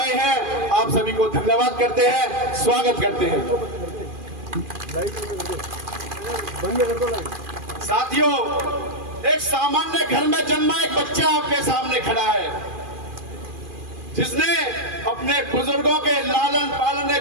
हैं, आप सभी को धन्यवाद करते हैं, स्वागत करते हैं। साथियों, एक सामान्य घर में जन्मा एक बच्चा आपके सामने खड़ा है, जिसने अपने बुजुर्गों के लालन पालन ने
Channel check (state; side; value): late; left; 2.4 ms